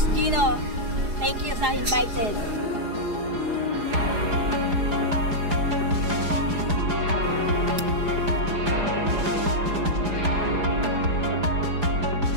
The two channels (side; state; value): left; late; 4.8 ms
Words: Gino, thank you sa invited.